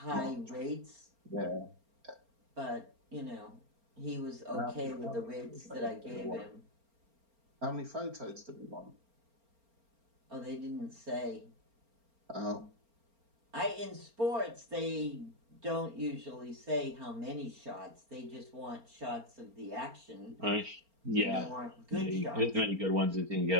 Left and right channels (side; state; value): left; late; 4.4 ms